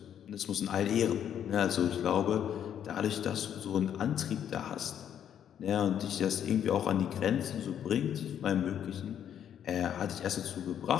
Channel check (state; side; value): quieter; right; 9.5 dB